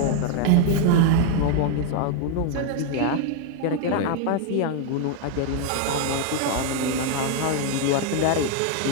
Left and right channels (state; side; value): different; both; correlation 0.00